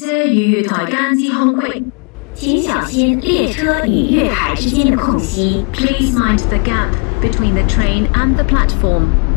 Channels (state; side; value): quieter; right; 36.1 dB